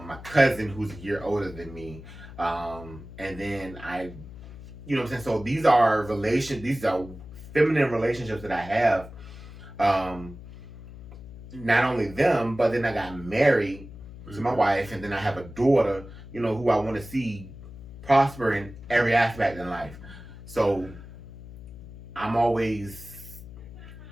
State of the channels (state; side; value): noise; left; hum, 15 dB below the sound